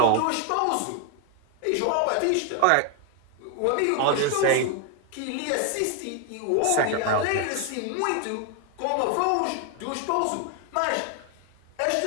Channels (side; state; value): both; different; correlation 0.01